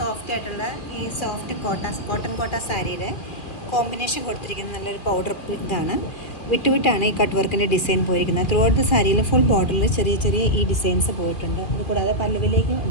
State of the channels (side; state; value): right; late; 2.5 ms